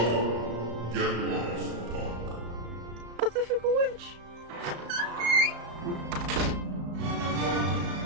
Get lost, punk. But the fickle witch.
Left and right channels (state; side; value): late; left; 34 ms